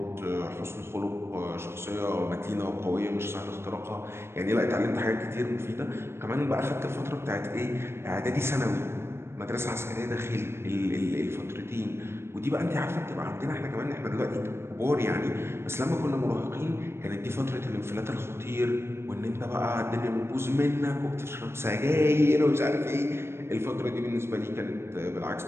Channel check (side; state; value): left; late; 0.12 ms